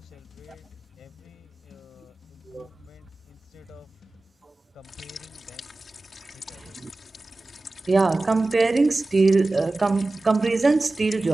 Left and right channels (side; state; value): left; quieter; 3.1 dB